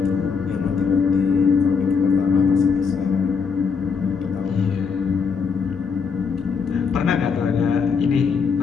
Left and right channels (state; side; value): quieter; right; 5.7 dB